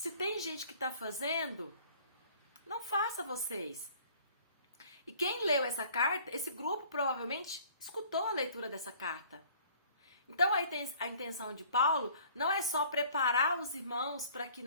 tem gente que está fazendo, não faça vocês. E quem leu essa carta, esse grupo provavelmente escutou a leitura dessa carta. Então a intenção de Paulo não é só preparar os irmãos para que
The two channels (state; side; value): inverted; both; correlation -0.53